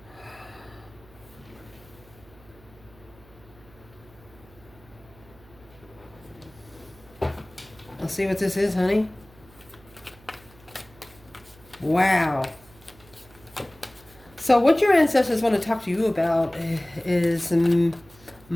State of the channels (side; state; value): right; noise; hum, 25 dB below the sound